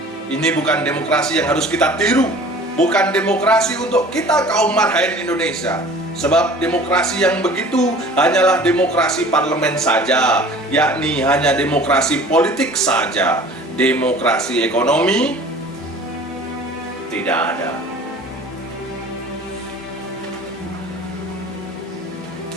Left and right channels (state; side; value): normal; both; correlation 0.46